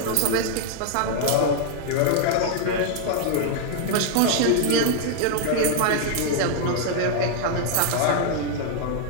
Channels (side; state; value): both; different; correlation 0.00